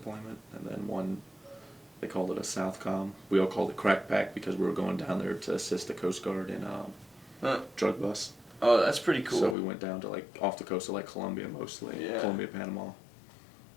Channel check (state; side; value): drops out; right; at 9.6 s